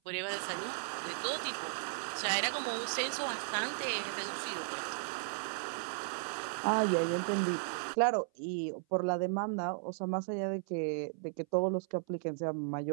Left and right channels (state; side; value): silent; left; 54 dB below the other